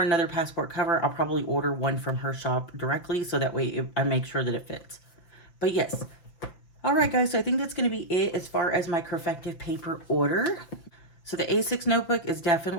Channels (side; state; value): right; late; 5.9 ms